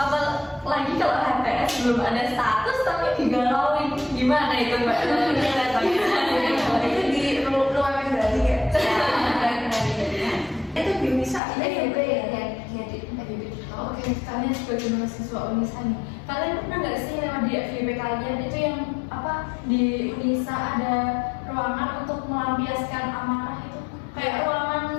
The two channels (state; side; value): drops out; right; at 11.4 s